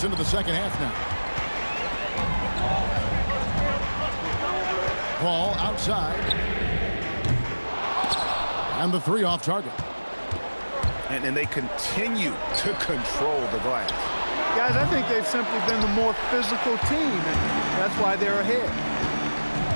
into the second half now. Paul outside. And the 3 off target. And they continue to control the glass. Guys, I think they've simply been the more physical team, and that's why they're ahead.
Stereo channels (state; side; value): inverted; both; correlation -1.00